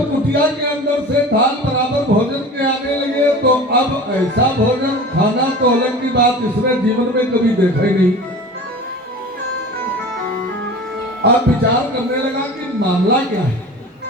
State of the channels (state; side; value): normal; both; correlation 0.37